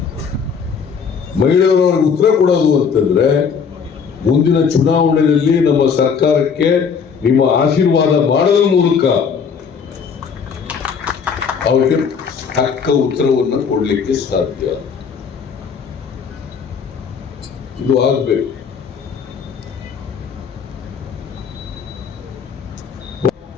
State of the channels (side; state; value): right; quieter; 6.3 dB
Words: ಮಹಿಳೆಯರು ಅವ್ರಿಗೆ ಉತ್ತರ ಕೊಡೋದು ಅಂತಂದ್ರೆ, ಮುಂದಿನ ಚುನಾವಣೆಯಲ್ಲಿ ನಮ್ಮ ಸರ್ಕಾರಕ್ಕೆ ನಿಮ್ಮ ಆಶೀರ್ವಾದ ಮಾಡೋದ್ರ ಮೂಲಕ ಅವರಿಗೆ ತಕ್ಕ ಉತ್ತರವನ್ನು ಕೊಡ್ಲಿಕ್ಕೆ ಸಾಧ್ಯ. ಇದು ಆಗ್ಬೇಕು.